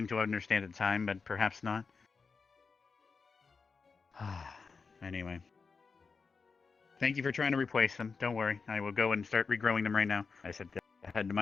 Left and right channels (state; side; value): quieter; right; 4.9 dB